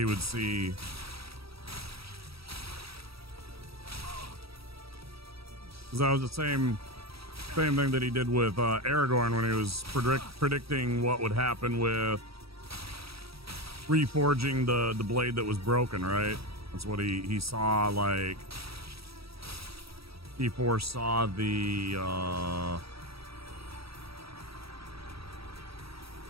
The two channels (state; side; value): late; left; 0.76 ms